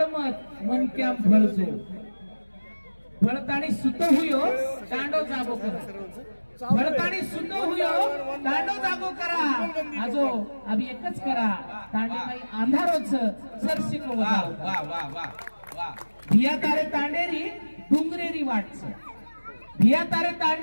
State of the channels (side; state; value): both; inverted; correlation -1.00